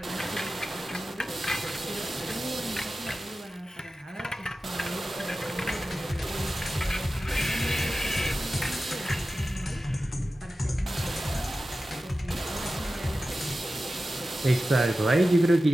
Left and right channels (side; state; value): both; normal; correlation 0.94